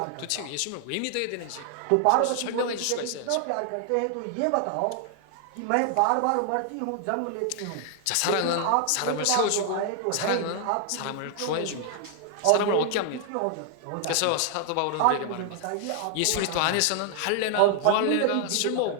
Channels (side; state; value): both; different; correlation 0.00